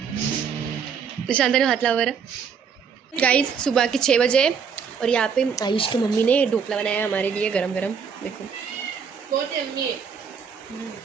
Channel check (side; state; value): left; quieter; 6.6 dB